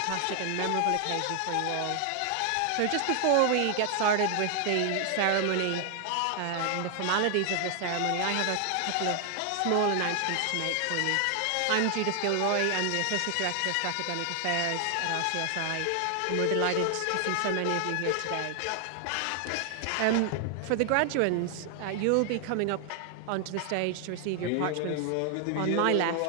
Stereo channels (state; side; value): different; both; correlation 0.00